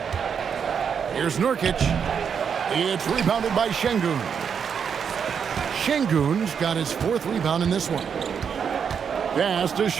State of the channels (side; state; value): left; quieter; 7.1 dB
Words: Here's Nurkic. It's rebounded by Şengün. Şengün's got his 4th rebound in this one. Pass to